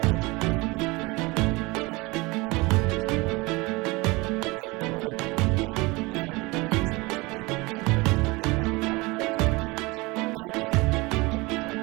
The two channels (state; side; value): quieter; left; 24.0 dB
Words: a place to move the playground equipment closer to the new preschool building. A paved driveway will be added behind the worship center to enable attendees to get around to all parts of the campus and to help make pickup and